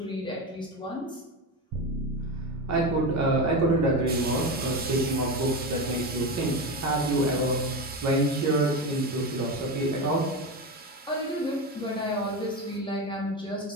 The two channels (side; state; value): both; normal; correlation 0.19